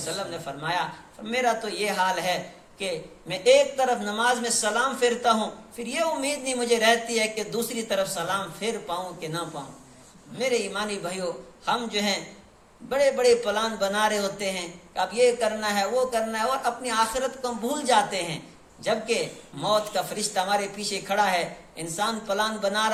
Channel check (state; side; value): identical; both; correlation 1.00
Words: نے فرمایا میرا تو یہ حال ہے کہ میں ایک طرف نماز میں سلام پھیرتا ہوں، پھر یہ امید نہیں مجھے رہتی ہے کہ دوسری طرف سلام پھیر پاؤں کہ نہ پاؤں. میرے ایمانی بھائیو، ہم جو ہیں بڑے بڑے پلان بنا رہے ہوتے ہیں کہ اب یہ کرنا ہے وہ کرنا ہے، اور اپنی آخرت کو ہم بھول جاتے ہیں، جبکہ موت کا فرشتہ ہمارے پیچھے کھڑا ہے. انسان پلان بنا